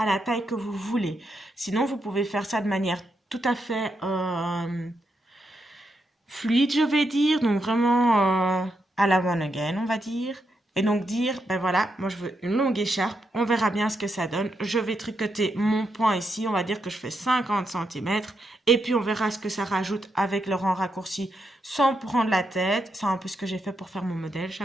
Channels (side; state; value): both; normal; correlation 0.82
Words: la taille que vous voulez. Sinon, vous pouvez faire ça de manière tout à fait fluide, je vais dire. Donc, vraiment à la one again, on va dire. Et donc dire, ben voilà, moi je veux une longue écharpe, on verra bien ce que ça donne. Je vais tricoter mon point ici, on va dire que je fais 50 cm. Et puis on verra ce que ça rajoute avec le rang raccourci sans prendre la tête. C'est un peu ce que j'ai fait pour faire mon modèle,